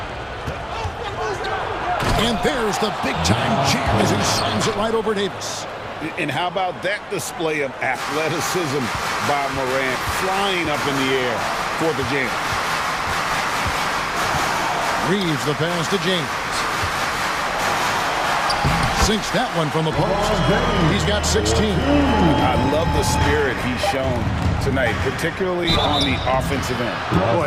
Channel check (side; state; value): both; identical; correlation 1.00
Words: And there's the big-time jam as he slams it right over Davis. And how about that display of athleticism by Morant, flying up in the air for the jam. Reeves the pass to James. Sinks that one from the post. He's got 16. I love the spirit he's shown tonight, particularly on the offensive end. Oh,